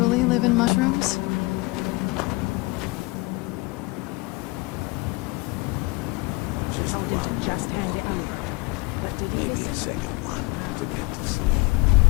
live in mushrooms?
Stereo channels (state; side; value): quieter; right; 23.8 dB